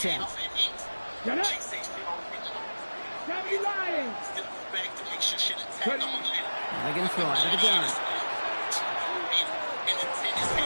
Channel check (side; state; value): both; inverted; correlation -1.00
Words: Get up. Lying. They're going to throw out of the gun.